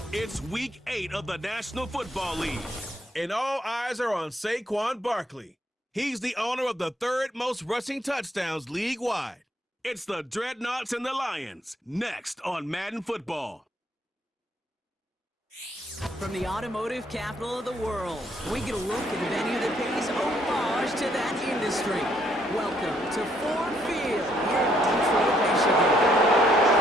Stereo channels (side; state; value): both; normal; correlation 0.70